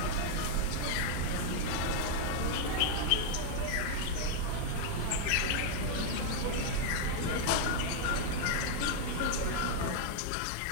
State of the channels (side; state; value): both; different; correlation 0.00